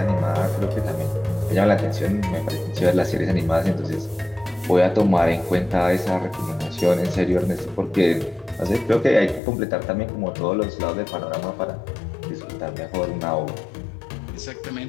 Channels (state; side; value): drops out; right; at 9.4 s